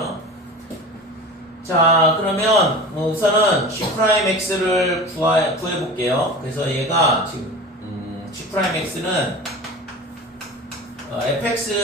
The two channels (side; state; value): both; normal; correlation 0.34